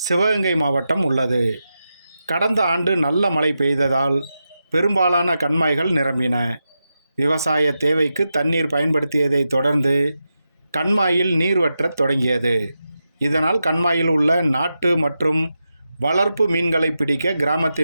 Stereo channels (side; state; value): both; inverted; correlation -0.89